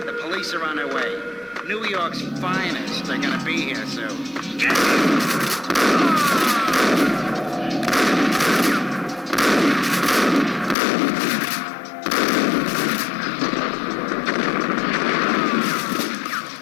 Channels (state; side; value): drops out; right; at 10.8 s